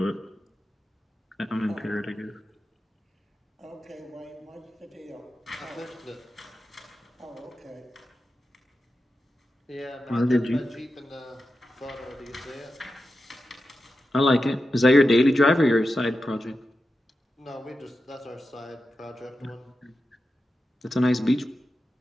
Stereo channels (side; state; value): both; normal; correlation 0.91